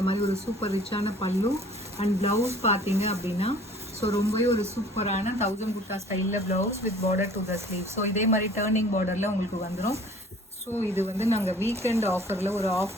மாதிரி ஒரு சூப்பர் ரிச்சான பல்லு. அண்ட் ப்ளவுஸ் பார்த்தீங்க அப்படின்னா ஸோ ரொம்பவே ஒரு சூப்பரான 1000 குர்தா ஸ்டைலில் blouse with border to the sleeve. So இதே மாதிரி டேர்னிங் பார்டரில் உங்களுக்கு வந்துடும். ஸோ இது வந்து நாங்கள் வீக்கெண்ட் ஆஃபரில் ஒரு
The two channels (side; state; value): both; normal; correlation 0.51